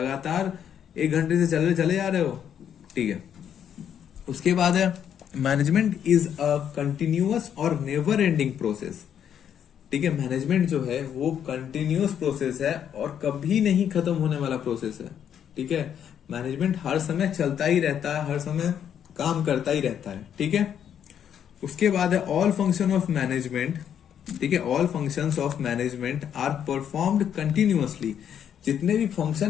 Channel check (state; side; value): quieter; right; 9.0 dB